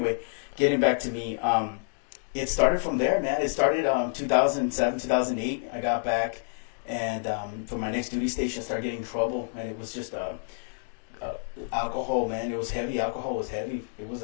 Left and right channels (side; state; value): right; silent; digital silence